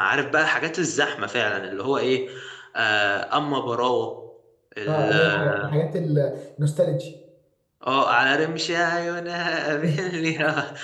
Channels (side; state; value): both; identical; correlation 1.00